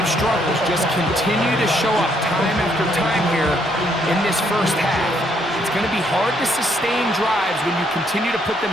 struggles just continue to show up time after time here in this first half. It's going to be hard to sustain drives when you continue to put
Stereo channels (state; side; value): normal; both; correlation 0.71